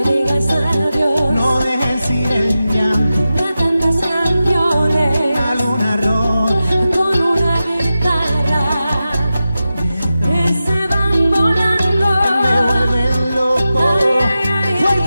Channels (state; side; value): inverted; both; correlation -0.92